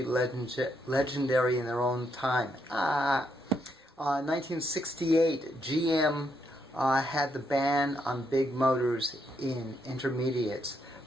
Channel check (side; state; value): both; normal; correlation 0.77